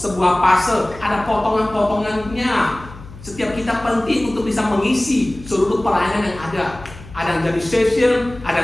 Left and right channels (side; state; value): left; noise; hum, 17 dB below the sound